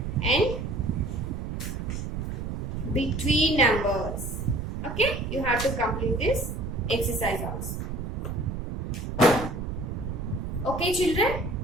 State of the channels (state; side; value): noise; right; rumble, 4 dB below the sound